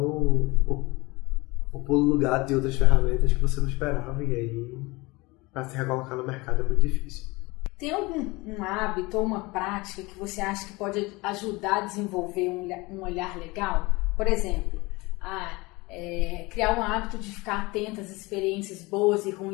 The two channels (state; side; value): quieter; right; 23.5 dB